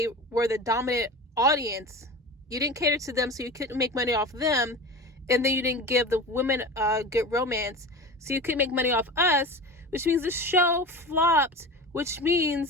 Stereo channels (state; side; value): normal; both; correlation 0.31